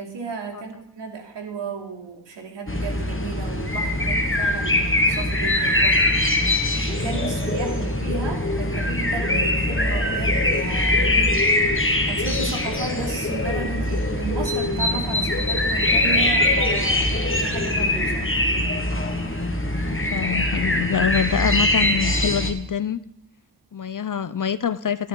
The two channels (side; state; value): both; normal; correlation 0.07